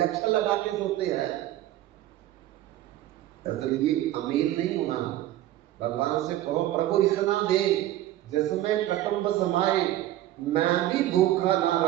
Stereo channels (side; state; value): left; quieter; 14.2 dB